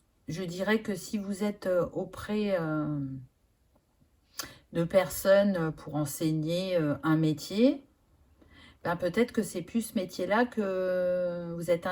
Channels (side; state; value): both; identical; correlation 1.00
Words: Je dirais que si vous êtes auprès de personnes pour enseigner un métier, ben peut-être que c'est plus ce métier-là que vous êtes